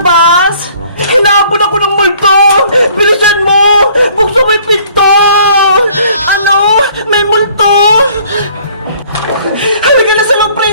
Hinahabol ako ng multo! Bilisan mo! Buksan mo yung pinto! Ano? May multo! Halika na sa loob,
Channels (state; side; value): inverted; both; correlation -0.58